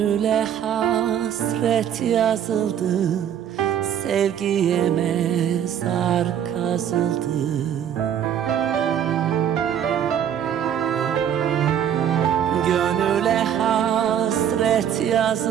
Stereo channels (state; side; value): quieter; left; 9.4 dB